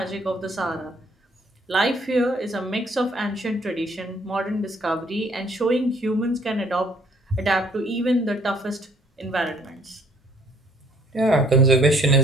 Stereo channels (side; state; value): both; normal; correlation 0.62